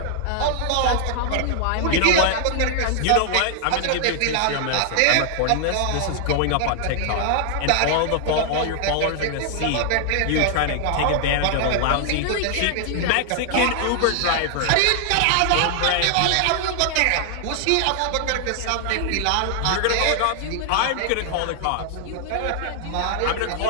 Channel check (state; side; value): different; both; correlation 0.00